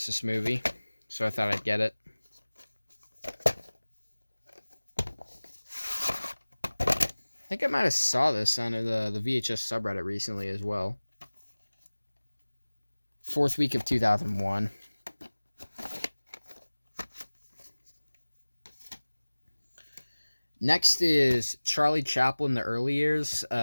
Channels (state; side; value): inverted; both; correlation -1.00